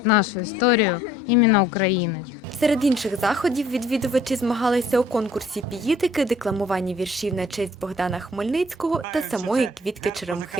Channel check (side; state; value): both; normal; correlation 0.57